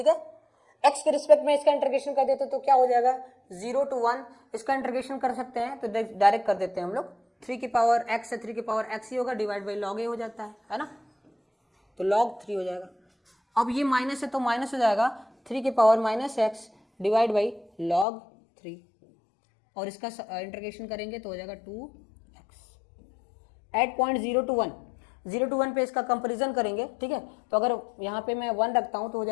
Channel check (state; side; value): drops out; right; at 18.1 s